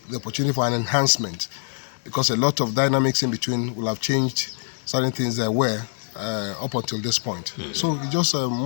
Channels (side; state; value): right; silent; digital silence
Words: opportunity for an enhancement, because a lot of dynamics in between will have changed certain things there were up until this point. So it's just